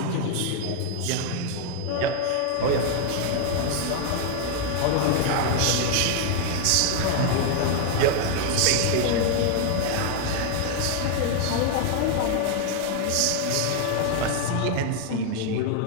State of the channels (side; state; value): both; different; correlation 0.00